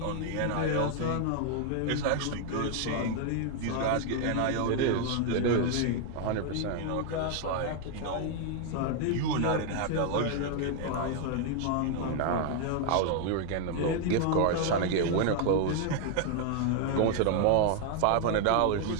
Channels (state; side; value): different; both; correlation 0.00